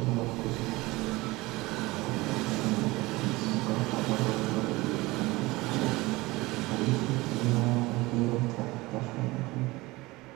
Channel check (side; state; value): left; quieter; 21.2 dB